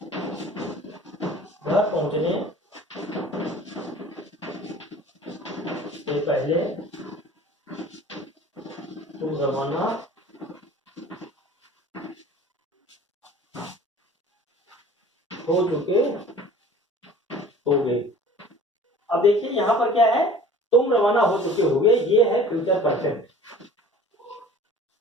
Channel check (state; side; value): normal; both; correlation 0.46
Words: घर पहुंचने से पहले तुम रवाना हो चुके होगे। अब देखिए यहाँ पर क्या है, तुम रवाना हो चुके होगे, ये है फ्यूचर परफेक्ट